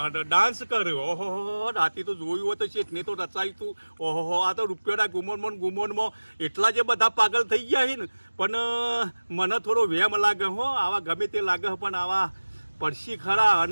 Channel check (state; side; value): inverted; both; correlation -1.00